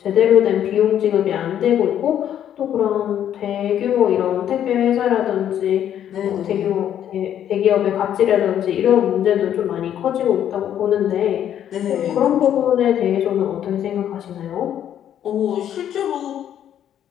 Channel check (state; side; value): quieter; right; 10.2 dB